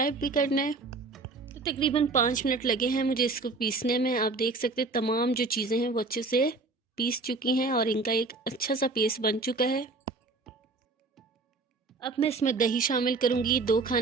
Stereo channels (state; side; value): quieter; left; 3.7 dB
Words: भी करना है। तो तकरीबन 5 मिनट लगे हैं मुझे इसको पीसने में। आप देख सकते हैं तमाम जो चीज़ें हैं वो अच्छे से पीस चुकी हैं और इनका एक अच्छा सा पेस्ट बन चुका है। अब मैं इसमें दही शामिल करूंगी, 2